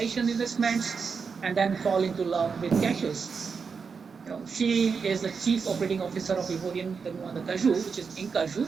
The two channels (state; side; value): quieter; left; 5.5 dB